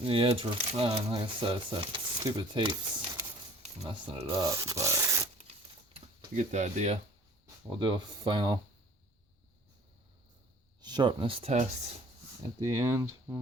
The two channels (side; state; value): both; normal; correlation 0.50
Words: The edge were fine. Like I said, it's that stupid tape's messing it up, but you get the idea. We'll do a final sharpness test at the end